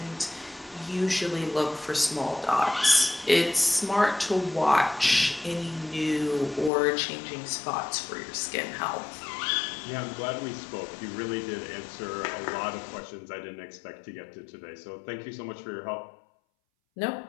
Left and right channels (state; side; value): drops out; right; at 6.7 s